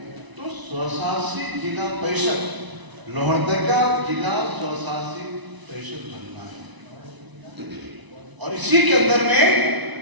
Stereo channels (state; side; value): late; left; 1.0 ms